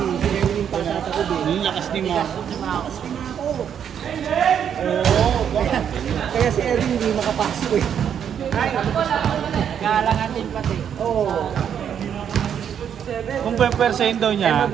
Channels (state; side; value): quieter; left; 8.5 dB